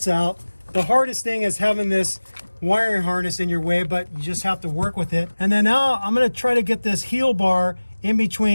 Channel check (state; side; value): inverted; both; correlation -1.00